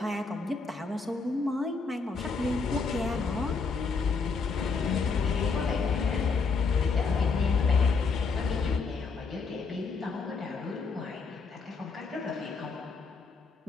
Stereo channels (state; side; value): quieter; right; 4.7 dB